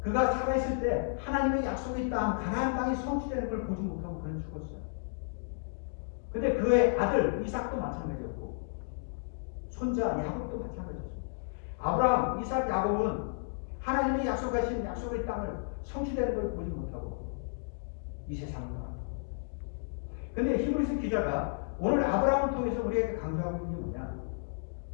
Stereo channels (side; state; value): right; silent; digital silence